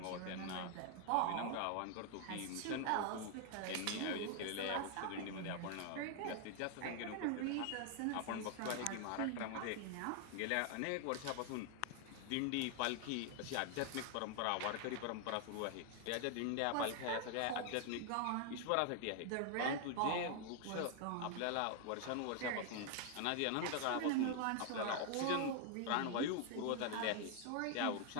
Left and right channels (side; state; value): both; different; correlation 0.00